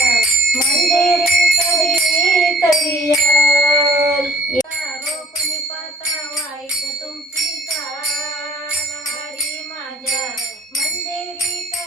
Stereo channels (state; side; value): normal; both; correlation 0.55